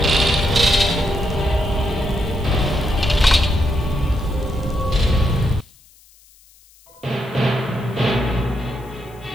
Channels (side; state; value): left; noise; hiss, 28 dB below the sound